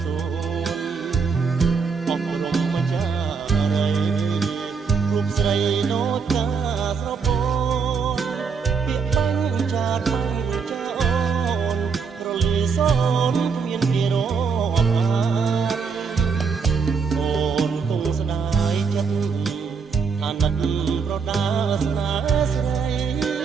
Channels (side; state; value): left; quieter; 5.5 dB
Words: សួនអស់រំម្ចាស់រីរូបស្រីដូចកាស្រពោនពាក្យបាញ់ចាតបាញ់ចាអូនរលីសូនគ្មានគេរាប់អានអូនគង់ស្ដាយចិត្តអាណិតប្រដាស្នាស្រី